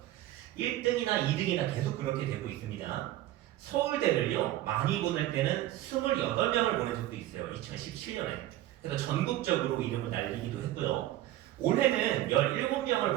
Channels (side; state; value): left; quieter; 14.7 dB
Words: 1등이나 2등이나 계속 그렇게 되고 있습니다. 서울대를요, 많이 보낼 때는 28명을 보낸 적도 있어요. 2017년에. 그래서 전국적으로 이름을 날리기도 했고요. 올해는 17명을